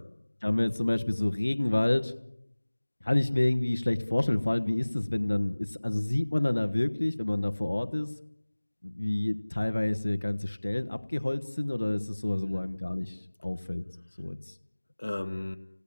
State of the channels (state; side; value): inverted; both; correlation -1.00